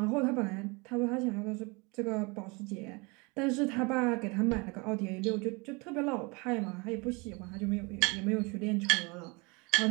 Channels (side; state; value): left; quieter; 28.2 dB